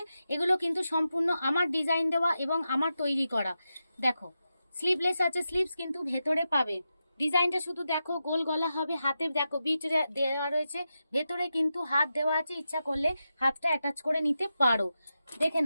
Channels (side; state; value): both; inverted; correlation -0.89